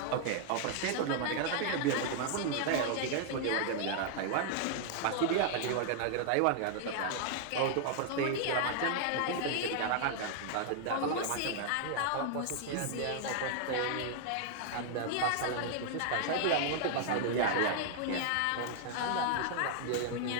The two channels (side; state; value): both; different; correlation 0.00